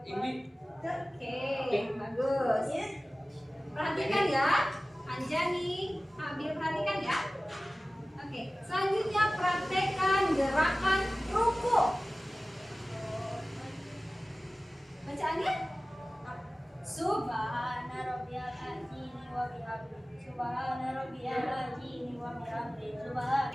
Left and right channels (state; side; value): normal; both; correlation 0.97